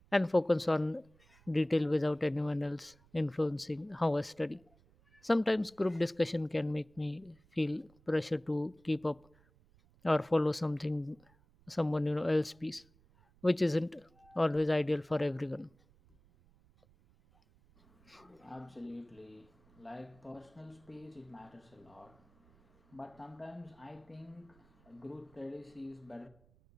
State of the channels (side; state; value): right; noise; rumble, 30 dB below the sound